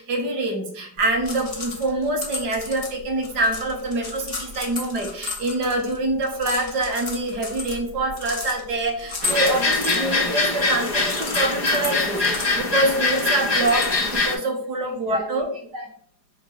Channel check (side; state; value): left; late; 4.9 ms